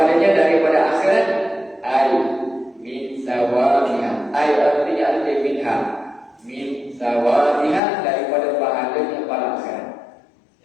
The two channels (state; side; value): drops out; right; at 7.8 s